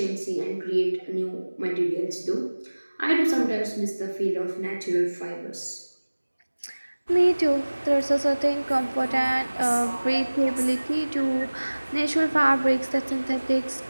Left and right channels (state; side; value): inverted; both; correlation -1.00